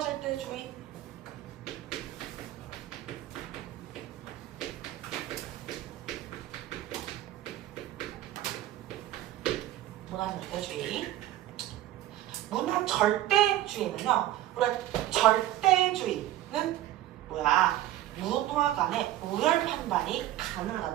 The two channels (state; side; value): quieter; left; 14.1 dB